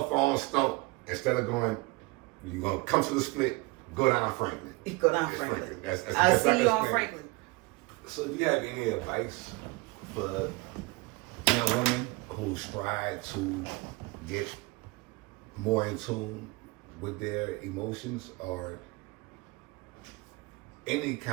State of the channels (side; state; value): left; quieter; 24.7 dB